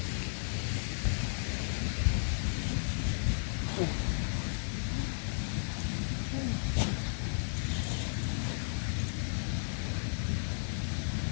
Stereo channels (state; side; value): silent; right; digital silence